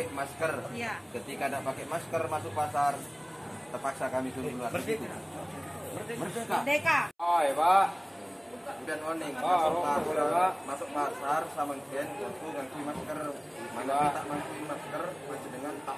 masker. Ya. Ketika tidak pakai masker masuk pasar, terpaksa kami suruh keluar. Begitu. Merdeka. Merdeka. Oh, ya Pak. Kemudian oning masuk pasar sama gen ngangkui masker. Mana tak ngangkui masker masih dengan tak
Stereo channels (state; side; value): identical; both; correlation 1.00